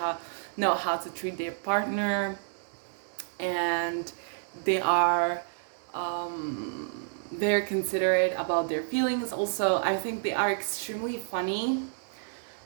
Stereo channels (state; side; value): silent; left; digital silence